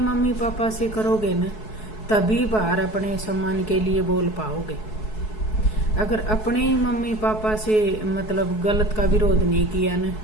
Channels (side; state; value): right; late; 4.7 ms